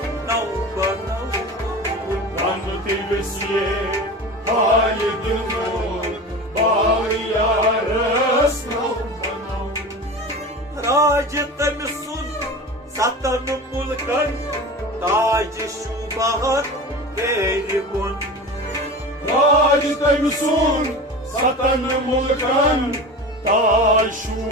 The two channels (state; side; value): normal; both; correlation 0.32